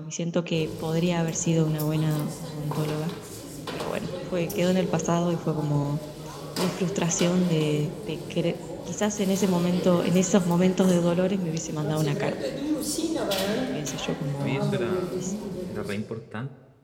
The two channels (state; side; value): identical; both; correlation 1.00